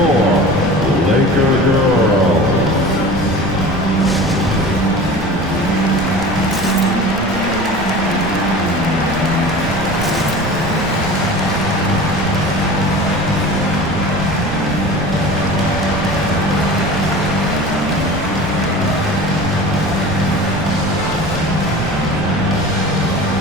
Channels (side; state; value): right; noise; rumble, 9 dB below the sound